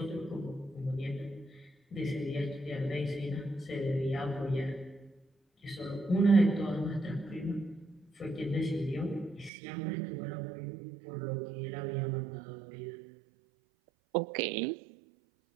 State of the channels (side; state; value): left; drops out; at 9.5 s